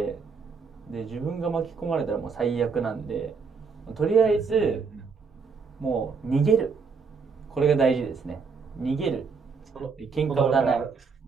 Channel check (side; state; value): left; quieter; 5.2 dB